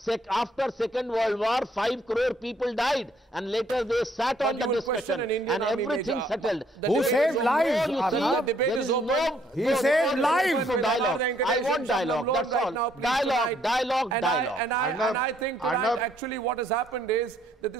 after Second World War, 5 crore people died, and later they sat on the discussion, and everything settled. Who saved lives? He saved lives. I want dialogue. That's all. Dialogue. And I think tonight, actually, what has happened is that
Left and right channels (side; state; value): both; normal; correlation 0.67